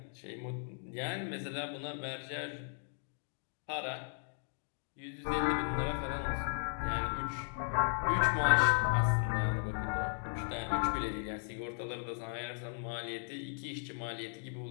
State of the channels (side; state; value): right; silent; 54 dB below the other